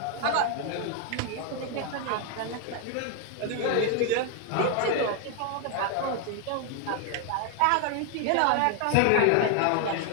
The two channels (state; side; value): different; both; correlation 0.01